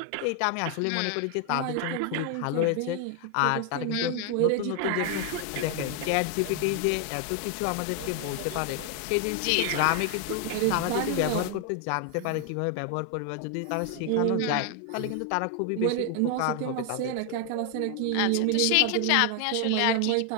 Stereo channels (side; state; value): both; different; correlation 0.00